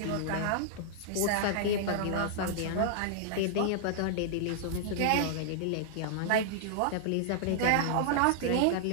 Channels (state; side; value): different; both; correlation -0.01